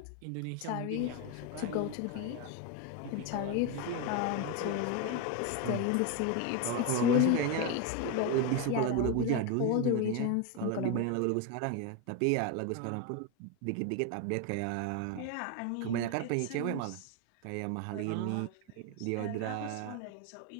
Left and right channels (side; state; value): both; different; correlation 0.02